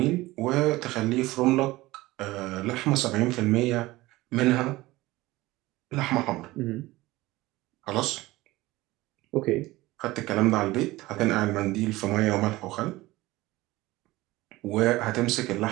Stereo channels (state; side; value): quieter; left; 19.0 dB